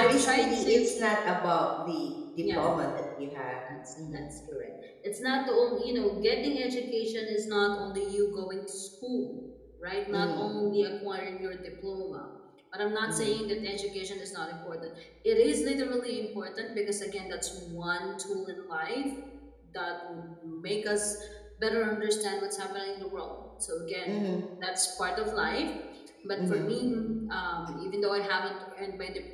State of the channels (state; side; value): identical; both; correlation 1.00